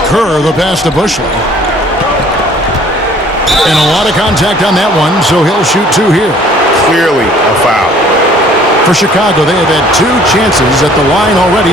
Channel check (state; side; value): normal; both; correlation 0.55